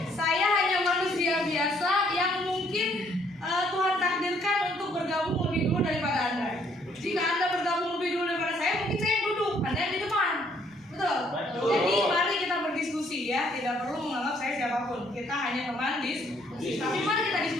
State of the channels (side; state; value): both; normal; correlation 0.66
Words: Saya hanya manusia biasa yang mungkin Tuhan takdirkan untuk bergabung lebih dulu daripada Anda. Jika Anda bergabung lebih dulu daripada saya, mungkin saya yang duduk, Anda yang di depan. Betul? Jadi mari kita berdiskusi ya, tidak perlu menganggap saya siapapun. Kita hanya teman diskusi. Tapi mari kita